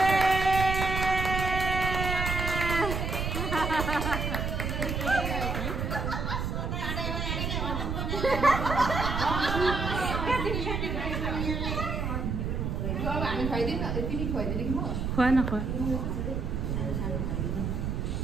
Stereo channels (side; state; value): right; noise; rumble, 2 dB below the sound